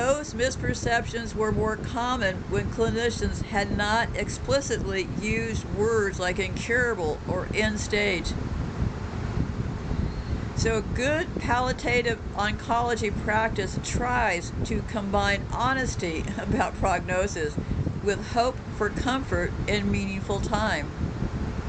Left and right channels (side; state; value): both; identical; correlation 1.00